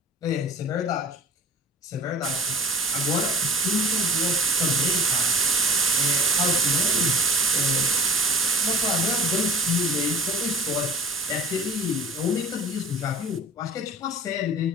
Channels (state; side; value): normal; both; correlation 0.41